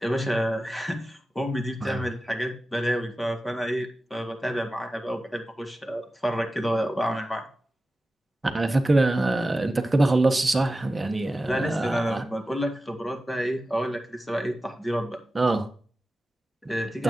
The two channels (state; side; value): normal; both; correlation 0.94